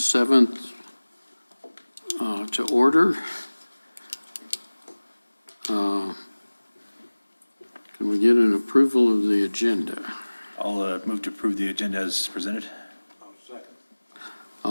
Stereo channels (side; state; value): both; inverted; correlation -1.00